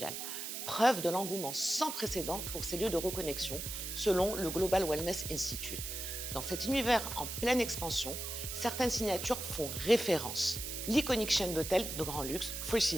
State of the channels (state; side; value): noise; right; hiss, 6 dB below the sound